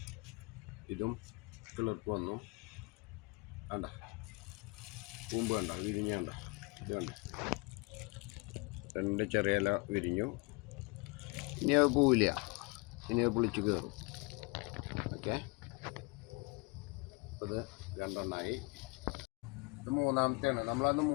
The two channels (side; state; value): right; quieter; 27.4 dB